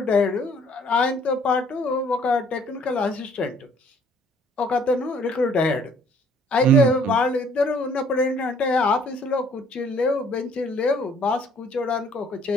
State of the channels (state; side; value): normal; both; correlation 0.59